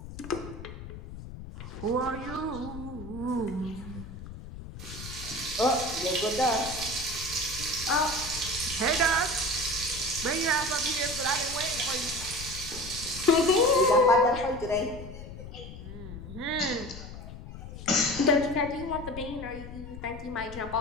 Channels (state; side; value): noise; left; rumble, 12 dB below the sound